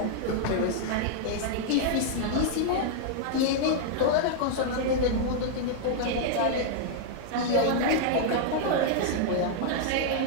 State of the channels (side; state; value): both; different; correlation -0.01